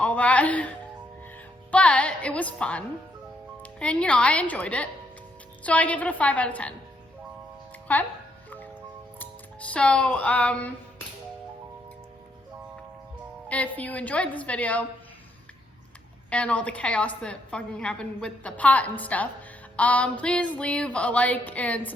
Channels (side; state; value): both; normal; correlation 0.75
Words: that, but it was fun, and you know, I enjoyed it. So I give it a 5 out of 10. Okay? So, if you enjoyed this video and all the chaos that fucking happened with the pot and stuff, please leave a like and